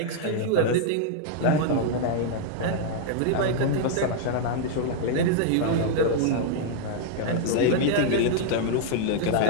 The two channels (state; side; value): different; both; correlation 0.00